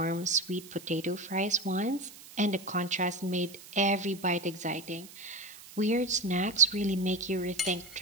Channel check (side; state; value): right; noise; hiss, 18 dB below the sound